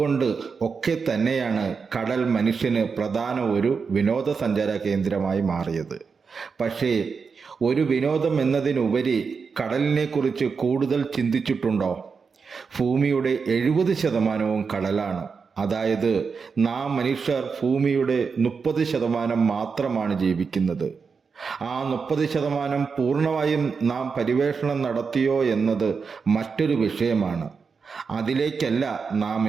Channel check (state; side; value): quieter; left; 5.4 dB